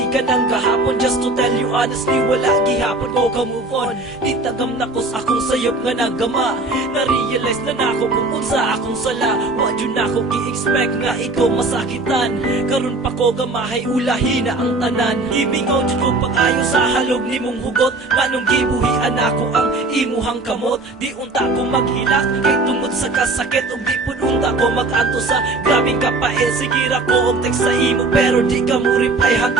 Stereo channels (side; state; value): left; quieter; 3.1 dB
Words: ang kahapon. Just to tell you honestly, wala gihapon ko ka move on. Di tagam na ko sa akong sayop nga nagama. Na-realize na nako kung unsa akong sala. Wa jud nako gi-expect nga ikaw masakitan. Karon pa ko gamahay ulahi na ang tanan. Gimingaw jud ko pag-ayo sa halog nimong hugot. Manong gibuhian ako ang imuhang kamot. Di unta ko maghilak kay tungod sa kasakit. Ug di pud unta ko mag-anto sa grabing kapael. Sige ra ko og text sa imo pero di ka mo reply